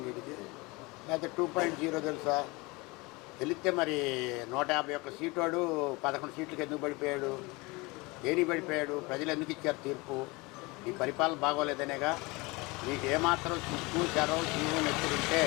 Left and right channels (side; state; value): right; quieter; 24.8 dB